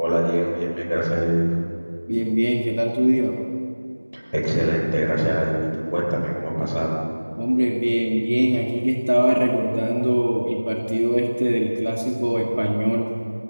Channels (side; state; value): both; inverted; correlation -1.00